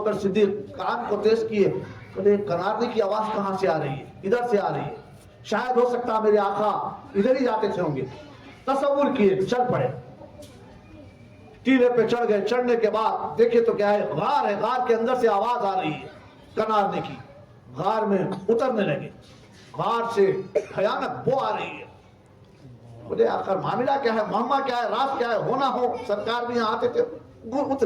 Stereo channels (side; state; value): both; identical; correlation 1.00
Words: صدیق کان کو تیز کیے، بولے کنارنے کی آواز کہاں سے آ رہی ہے؟ ادھر سے آ رہی ہے، شاید ہو سکتا میرے آقا ادھر ہی جاتے تھے ہوں گے۔ تصور کیے، چل پڑے، ٹیلے پہ چڑھ گئے۔ چڑھنے کے بعد دیکھیں تو کیا ہے، غار ہے، غار کے اندر سے آواز آ رہی ہے کنارنے کی۔ غار میں اترنے لگے، غار سے بھیانک بو آ رہی ہے۔ بولے آخر معاملہ کیا ہے، معاملہ کیا ہے، راز کیا ہے، ہونا ہو۔ سرکار بھی یہاں آتے تھے،